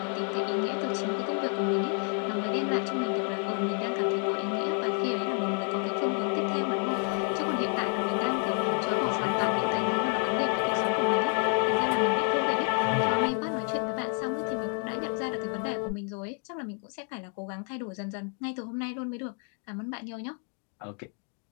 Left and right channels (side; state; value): right; quieter; 36.8 dB